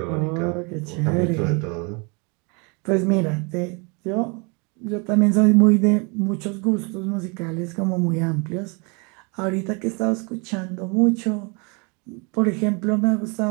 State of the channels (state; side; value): quieter; left; 32.2 dB